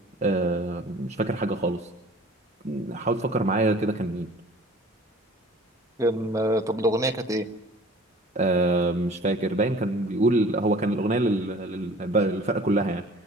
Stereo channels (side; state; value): both; normal; correlation 0.48